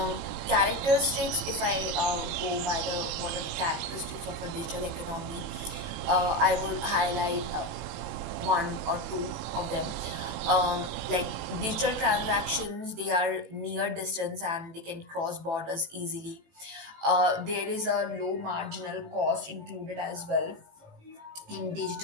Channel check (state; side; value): late; left; 18 ms